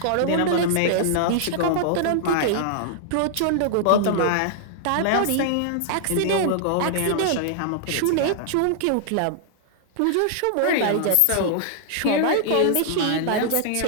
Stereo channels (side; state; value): both; different; correlation -0.01